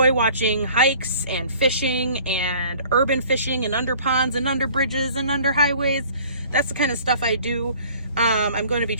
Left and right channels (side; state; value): both; inverted; correlation -0.51